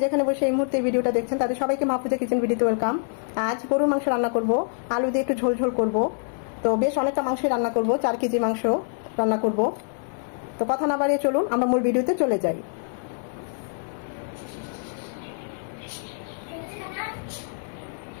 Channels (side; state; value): right; silent; digital silence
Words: যেখানে বসে এই মুহূর্তে ভিডিওটা দেখছেন তাদের সবাইকে মাহফুজা কিচেন ভিডিওতে ওয়েলকাম। আজ গরুর মাংস রান্না করব, আলু দিয়ে একটু ঝোল ঝোল করব। তো বেশ অনেকটা মাংসই রান্না করব, 4 কেজি মাংস রান্না করব। তো কথা না বাড়িয়ে চলুন আমরা মূল ভিডিওতে চলে যাই।